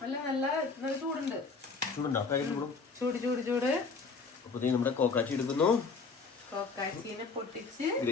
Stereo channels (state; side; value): quieter; right; 4.6 dB